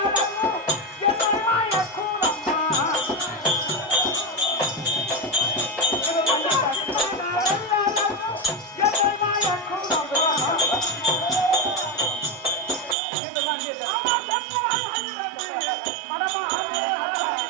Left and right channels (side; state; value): left; drops out; at 13.0 s